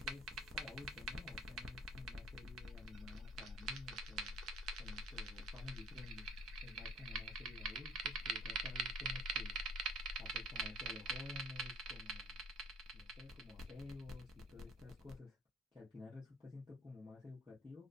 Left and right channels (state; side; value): normal; both; correlation 0.49